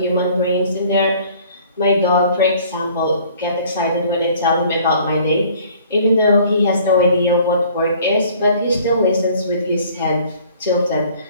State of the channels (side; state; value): both; inverted; correlation -0.54